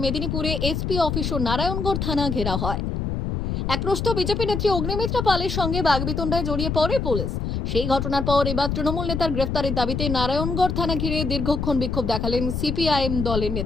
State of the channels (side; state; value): left; noise; rumble, 2 dB below the sound